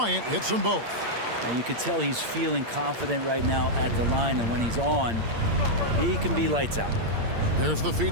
hits them both. Now you can tell he's feeling confident right now at the line, and when he's on, he can be lights out. There's the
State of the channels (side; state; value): left; late; 8.7 ms